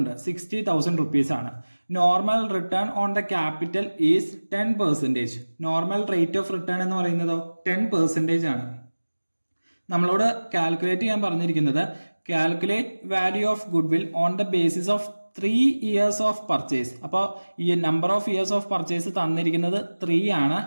60,000 റുപ്പീസ് ആണ്. Normal return on the capital is 10%. Normal rate of return എന്ന് പറയുന്നതോ 10% ആണ്. നമ്മളോട് കാൽക്കുലേറ്റ് ചെയ്യാൻ പറഞ്ഞിരിക്കുന്നത് calculate value of good will on the basis of 3 years of purchase. അപ്പോൾ ഈ number of years of purchase തന്നിരിക്കുന്നത് 3 ആണ്.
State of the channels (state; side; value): inverted; both; correlation -1.00